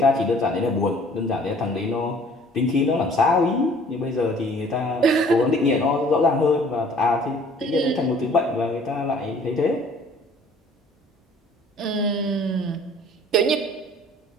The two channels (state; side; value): normal; both; correlation 0.54